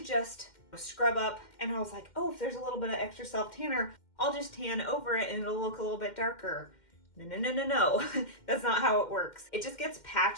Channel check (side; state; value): right; late; 2.1 ms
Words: just scrub up and I was like, oh, if there's a little bit of extra self-tanner, I'll just tan over it and it'll look a little bit darker. No. That's not how it works. It just gets